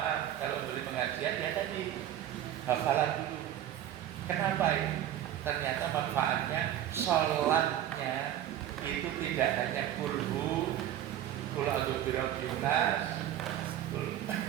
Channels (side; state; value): left; quieter; 11.6 dB